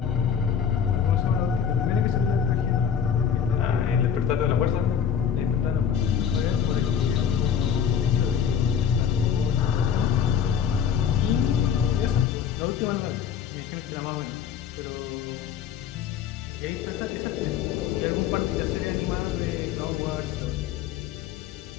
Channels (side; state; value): right; quieter; 8.0 dB